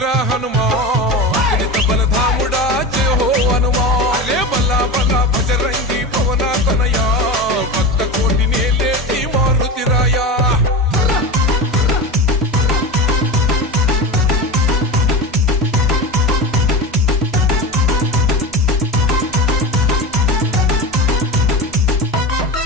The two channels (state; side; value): normal; both; correlation 0.26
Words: హనుమా అతులిత బలధాముడా జయ హో హనుమా అరే బలా బలా బజరంగి పవన తనయా భక్త కోటి నేలేటి మారుతిరాయా